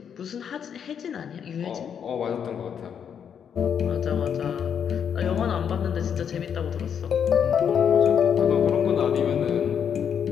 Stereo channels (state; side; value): quieter; right; 7.9 dB